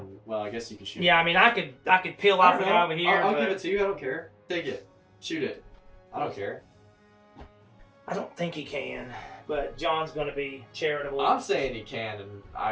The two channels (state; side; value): identical; both; correlation 1.00